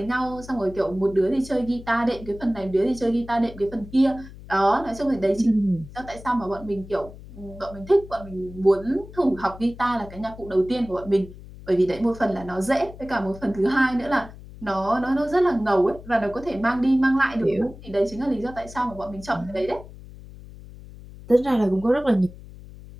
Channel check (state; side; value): noise; left; hum, 17 dB below the sound